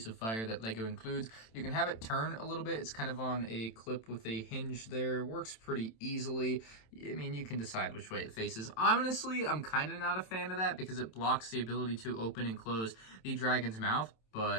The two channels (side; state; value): right; late; 27 ms